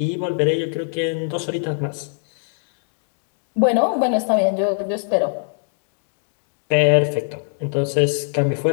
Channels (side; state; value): right; silent; digital silence